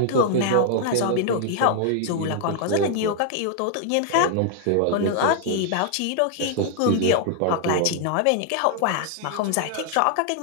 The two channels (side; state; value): both; different; correlation -0.01